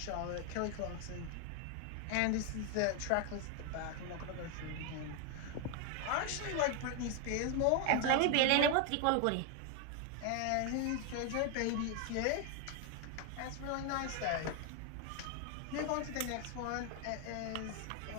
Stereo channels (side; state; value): both; different; correlation 0.01